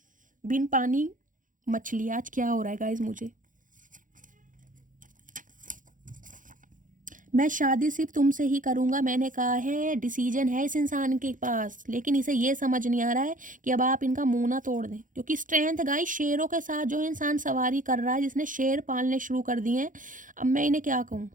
बिन पानी मछली। आज क्या हो रहा है गाइस मुझे। मैं शादी सिर्फ तुमसे ही करूँगा, मैंने कहा है। डिसीजन है इस इंसान के पास, लेकिन इसे ये समझ नहीं आ रहा है कि अब आप इनका मुंह ना तोड़ दें। क्योंकि स्ट्रेंथ गाइस, शेरों के साथ जो इंसान सवारी कर रहा है, जिसने शेर पालने शुरू कर दिए हैं, अब मैं इन्हें क्या कहूँ,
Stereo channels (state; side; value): late; left; 0.38 ms